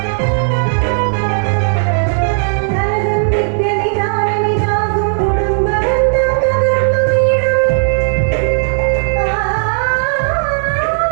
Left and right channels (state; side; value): silent; left; digital silence